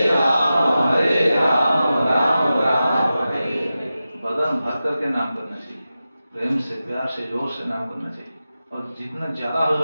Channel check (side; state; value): both; inverted; correlation -0.93